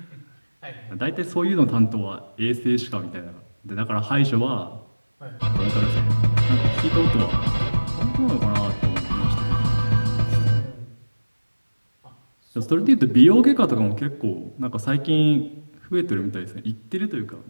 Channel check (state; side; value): inverted; both; correlation -1.00